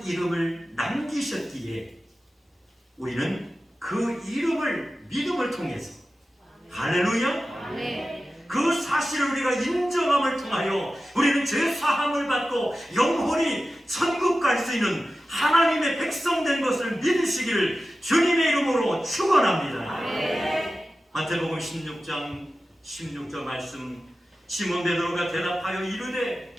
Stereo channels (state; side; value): normal; both; correlation 0.94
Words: 이름을 남기셨기에 우리는 그 이름을 믿음을 통해서 할렐루야 그 사실을 우리가 인정함을 통하여 우리는 죄사함을 받고 영혼이 천국 갈 수 있는 하나님의 백성 된 것을 믿으시기를 주님의 이름으로 축원합니다. 마태복음 16장 16절 말씀, 시몬 베드로가 대답하여 이르되